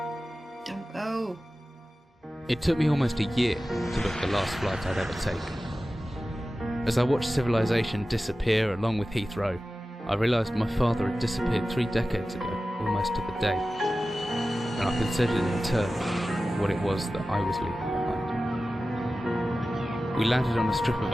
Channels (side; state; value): both; normal; correlation 0.95